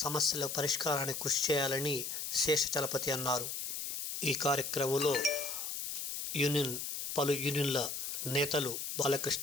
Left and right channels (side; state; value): left; noise; hiss, 4 dB below the sound